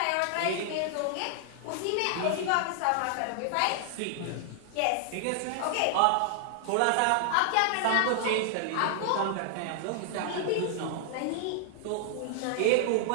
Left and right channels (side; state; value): both; different; correlation 0.00